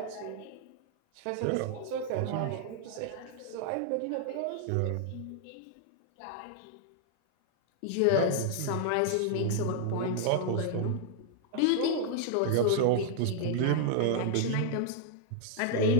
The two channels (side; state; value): both; different; correlation 0.00